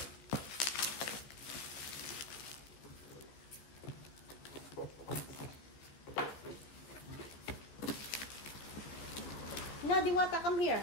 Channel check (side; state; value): right; late; 14 ms